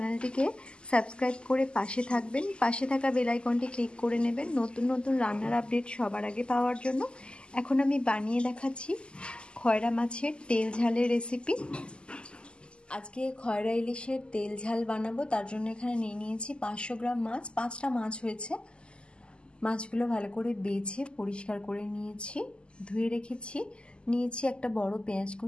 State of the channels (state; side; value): late; right; 0.050 ms